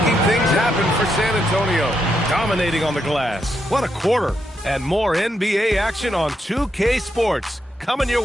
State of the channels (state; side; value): normal; both; correlation 0.81